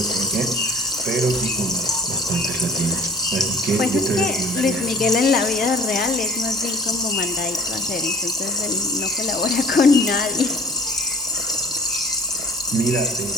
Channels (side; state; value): both; normal; correlation 0.48